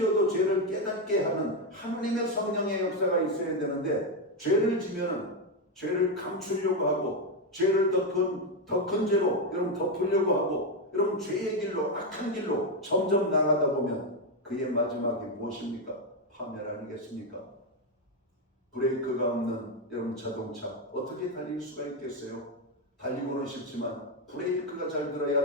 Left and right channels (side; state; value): both; normal; correlation 0.06